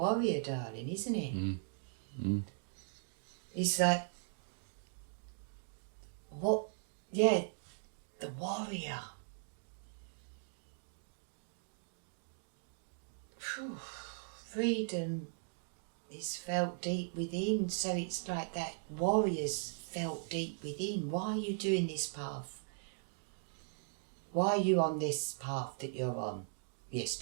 darling, isn't it? It's like, the warrior. Whew. Freedom is felt deep within, so it's like that warrior's felt deep within. Why are you doing this path? Why are you on this path that you're on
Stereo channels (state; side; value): silent; left; digital silence